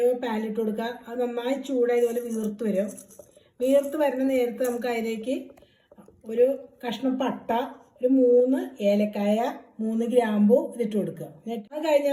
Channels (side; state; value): both; identical; correlation 1.00